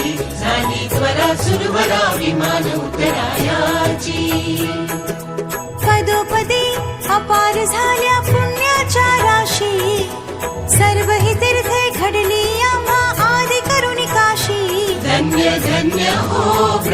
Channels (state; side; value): identical; both; correlation 1.00